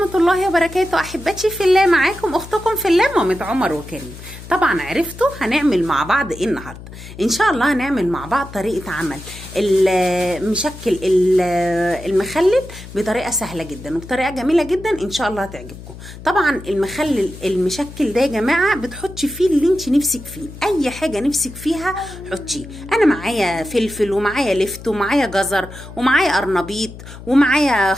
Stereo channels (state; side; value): noise; left; hum, 15 dB below the sound